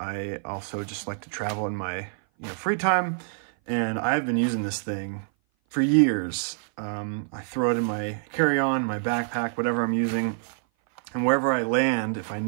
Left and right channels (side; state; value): left; silent; 57 dB below the other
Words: also just like to travel in my free time, and I've been using this thing for years. I throw it in my carry-on, my backpack, whatever I'm using, and wherever I land, if I